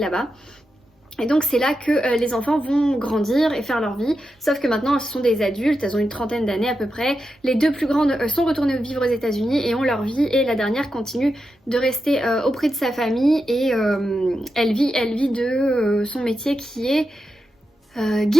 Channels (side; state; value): both; normal; correlation 0.88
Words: Et donc c'est là que les enfants vont grandir et faire leur vie, sauf que maintenant ce sont des adultes, elles ont une trentaine d'années à peu près. Les deux plus grandes sont retournées vivre aux États-Unis et ont leur vie, et la dernière continue de rester auprès de sa famille et elle vit de son métier qui est